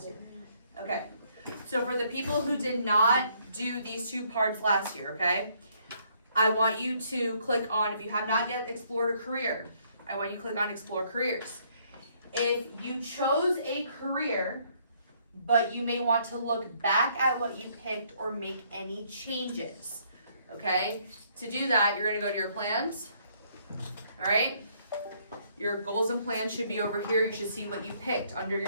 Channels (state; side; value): inverted; both; correlation -0.67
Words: year. Okay, so for the people who did not do these two parts last year, okay, I want you to click on, if you have not yet explored a career, I want you to click on Explore Careers. If you chose a career, but you may want to look back at what you picked or make any changes, okay, to do that, you're going to go to your plans, all right? Your goals and plans should be over here. You should see what you picked under